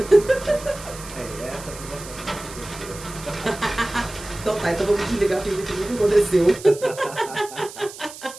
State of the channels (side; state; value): right; noise; hiss, 15 dB below the sound